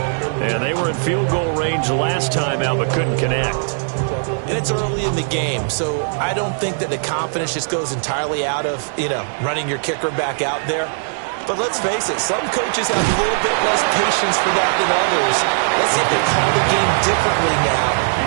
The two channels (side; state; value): left; silent; digital silence